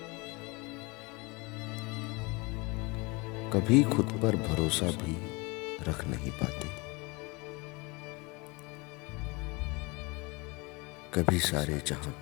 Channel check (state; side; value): quieter; right; 26.8 dB